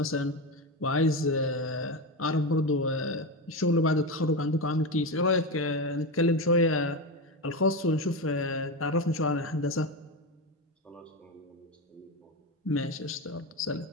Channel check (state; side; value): normal; both; correlation 0.16